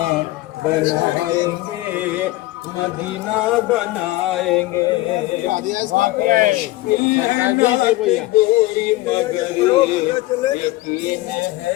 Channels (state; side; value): quieter; right; 18.4 dB